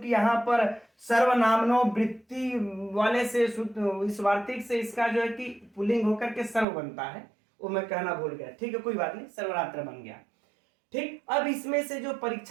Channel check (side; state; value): left; drops out; at 6.7 s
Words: यहाँ पर सर्वनामनो वृत्ति वाले से इस वार्तिक से इसका जो है कि पुल्लिंग होकर के सर्व बनता है, वो मैं कहना भूल गया। ठीक है, कोई बात नहीं, सर्वरात्र बन गया। ठीक, अब इसमें से जो